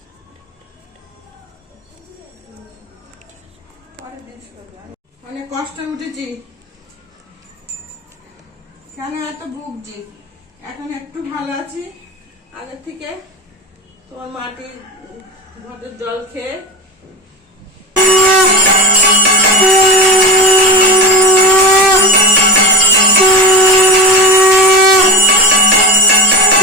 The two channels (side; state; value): both; normal; correlation 0.25